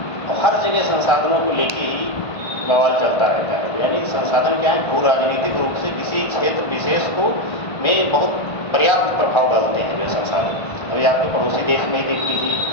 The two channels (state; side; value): late; right; 1.5 ms